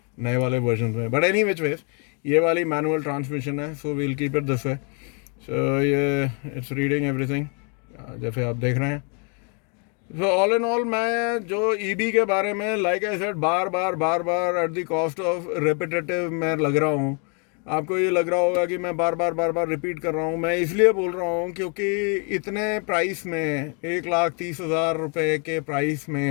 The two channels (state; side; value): quieter; right; 37.8 dB